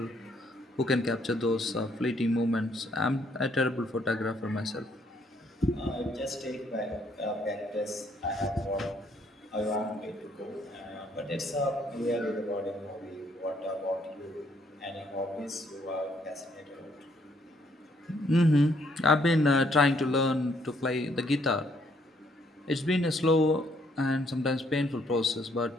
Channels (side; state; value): both; normal; correlation 0.69